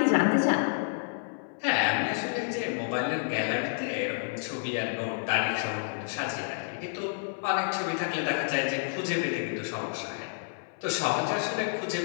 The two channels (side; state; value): right; silent; 58 dB below the other